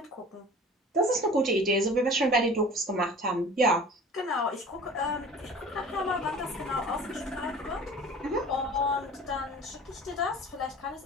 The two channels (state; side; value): normal; both; correlation 0.43